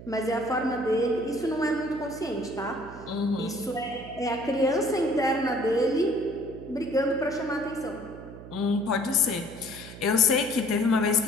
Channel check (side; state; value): right; noise; hum, 14 dB below the sound